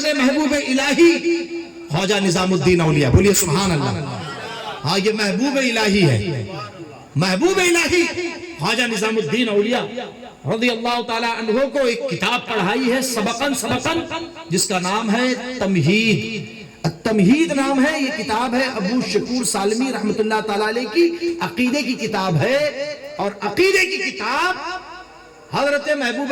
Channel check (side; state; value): both; identical; correlation 1.00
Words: نے محبوب الہی خواجہ نظام الدین اولیاء، بولیے سبحان اللہ، ہاں یہ محبوب الہی ہے، محبوب الہی خواجہ نظام الدین اولیاء رضی اللہ تعالیٰ عنہ کو ایک کتاب پڑھائی ہے سبقاً جس کا نام ہے تمہید۔ التمہید نام ہے، یہ کتاب ہے ابو شکور سالمی رحمت اللہ تعالیٰ علیہ کی عقیدے کی کتاب ہے، اور عقیدے کی کتاب حضرت محبوب